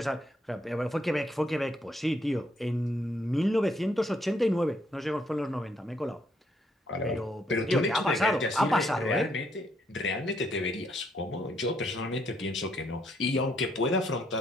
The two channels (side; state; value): both; normal; correlation 0.72